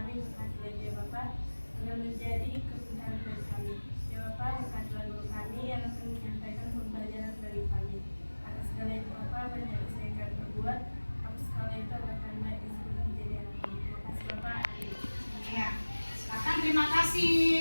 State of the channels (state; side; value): inverted; both; correlation -1.00